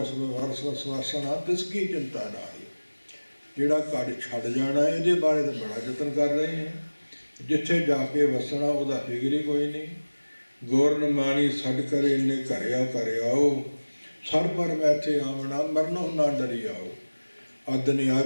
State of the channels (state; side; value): inverted; both; correlation -1.00